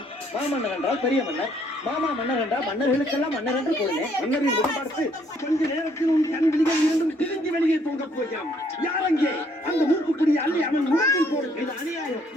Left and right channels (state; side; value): normal; both; correlation 0.66